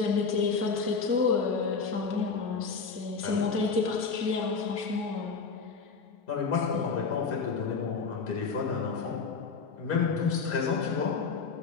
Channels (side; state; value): right; quieter; 5.0 dB